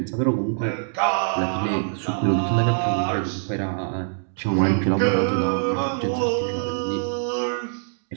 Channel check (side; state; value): left; silent; digital silence